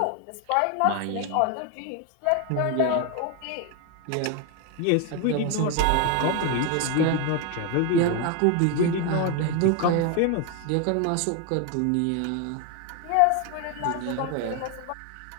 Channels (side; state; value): both; different; correlation 0.01